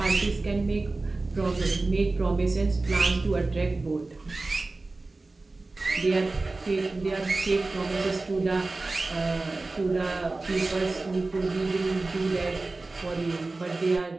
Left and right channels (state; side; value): quieter; left; 3.3 dB